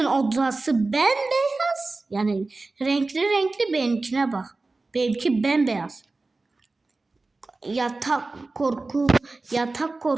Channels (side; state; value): left; quieter; 3.4 dB